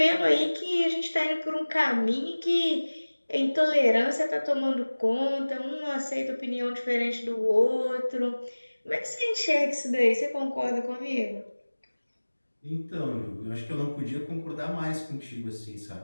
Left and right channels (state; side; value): inverted; both; correlation -1.00